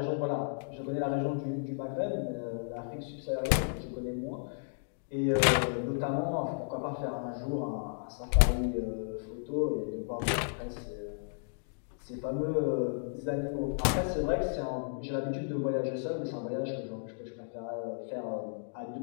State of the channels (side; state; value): right; silent; digital silence